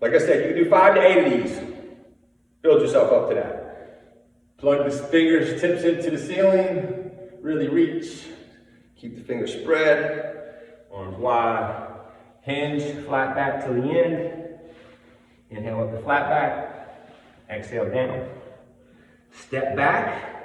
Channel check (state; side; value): identical; both; correlation 1.00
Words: I said, you can do 5 to 8 of these. Build yourself up to that. Plug the fingers, tips into the ceiling. Really reach. Keep the fingers spread. Arms wide. Hinge, flat back to the end. Inhale up the flat back. Exhale down. Step back